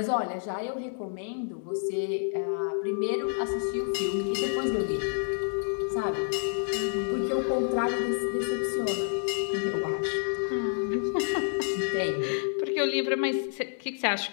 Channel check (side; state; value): right; silent; digital silence